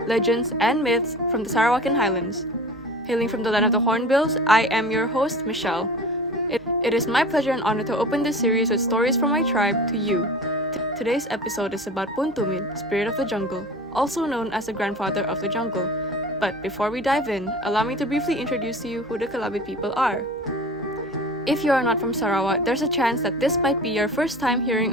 legends, and myths from the Sarawakian Highlands. Hailing from the land of the Hornbills, I am your host, Michelle. It is my pleasure and honor to open this series with stories from my tribe to you. Today's episode is about Tumid, spirit of the jungle, also known as the grandfather of the jungle. But before we dive in, allow me to briefly introduce to you who the Kalabit people are. If you are not from Sarawak, there's a chance that this might be your first time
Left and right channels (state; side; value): normal; both; correlation 0.38